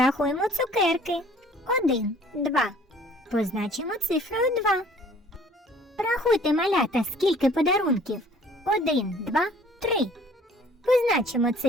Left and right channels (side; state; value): both; normal; correlation 0.54